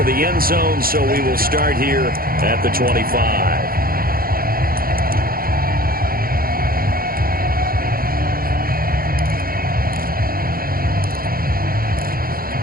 the end zone, so we will start here at the 25.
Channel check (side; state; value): left; late; 0.42 ms